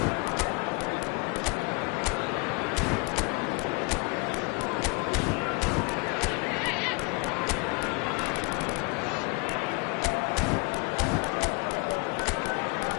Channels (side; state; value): right; quieter; 28.9 dB